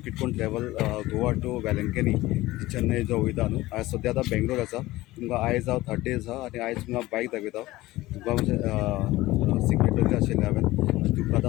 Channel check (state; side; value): quieter; right; 18.1 dB